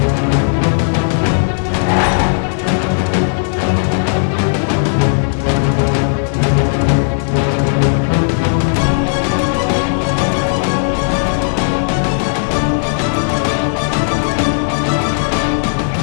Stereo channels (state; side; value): silent; right; digital silence